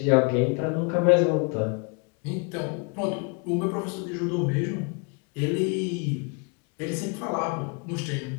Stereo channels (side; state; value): right; quieter; 33.3 dB